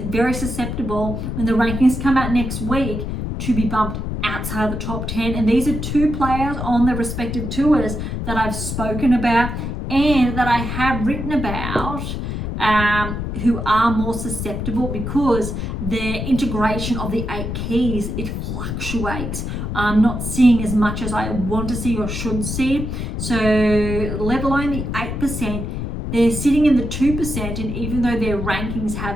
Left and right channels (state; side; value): noise; left; rumble, 4 dB below the sound